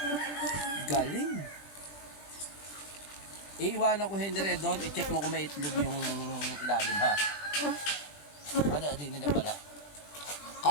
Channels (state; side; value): late; right; 20 ms